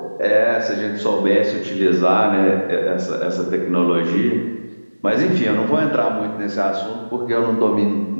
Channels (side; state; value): both; inverted; correlation -1.00